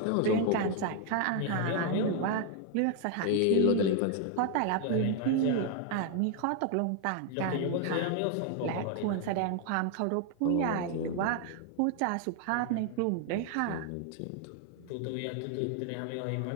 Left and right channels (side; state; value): both; different; correlation 0.00